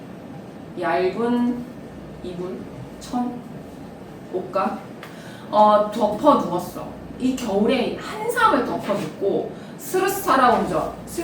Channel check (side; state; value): both; identical; correlation 1.00